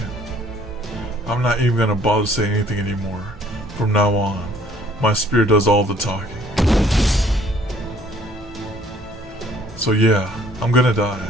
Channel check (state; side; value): normal; both; correlation 0.59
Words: I'm not even gonna bother saying anything anymore. From now on, my spirit does all the talking. So yeah, I'm gonna die.